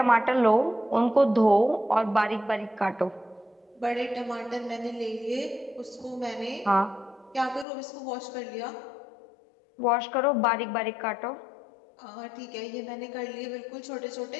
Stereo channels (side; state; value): right; drops out; at 7.7 s